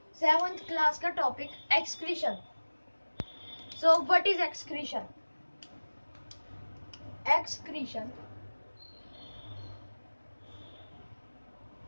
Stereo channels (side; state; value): both; inverted; correlation -1.00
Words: 7th क्लास का topic excretion. So what is excretion? Excretion